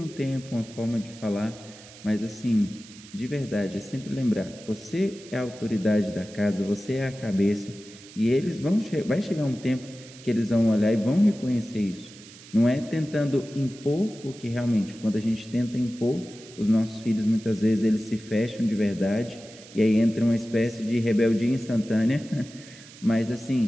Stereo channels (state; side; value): noise; right; hiss, 19 dB below the sound